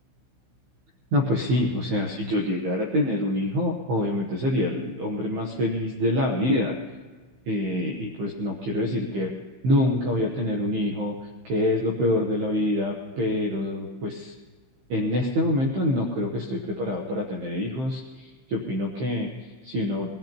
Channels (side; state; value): left; late; 15 ms